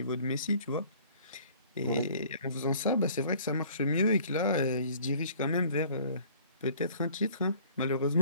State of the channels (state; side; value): inverted; both; correlation -0.54